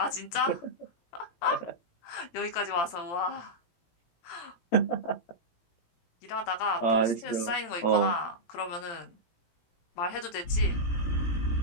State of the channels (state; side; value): late; right; 17 ms